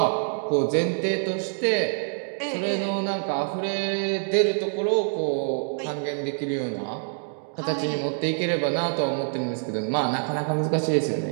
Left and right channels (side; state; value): left; silent; 59 dB below the other